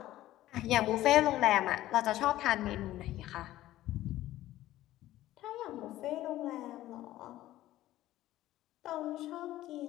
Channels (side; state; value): right; quieter; 14.8 dB